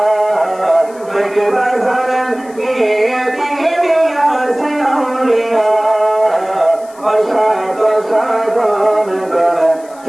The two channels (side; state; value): left; noise; hiss, 25 dB below the sound